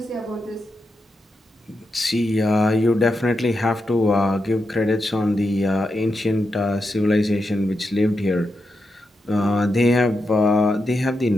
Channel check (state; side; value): normal; both; correlation 0.86